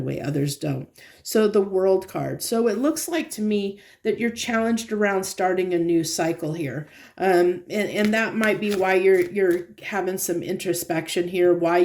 way others don't. So the World card. So it looks like to me that you're challenged around starting a new cycle here. And that might be why you're having some introspection here, why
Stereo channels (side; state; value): both; identical; correlation 1.00